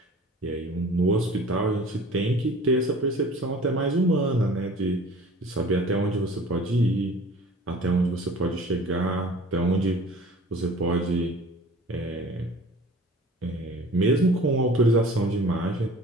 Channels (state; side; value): normal; both; correlation 0.45